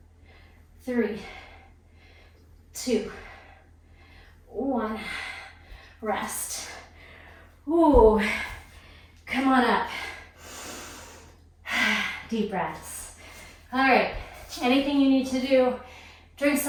3, 2, 1. Rest. Ooh. Come on up. Deep breaths. All right. Anything you need to do, drink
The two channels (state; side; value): identical; both; correlation 1.00